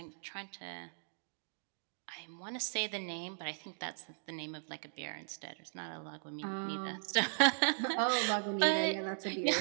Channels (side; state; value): left; silent; digital silence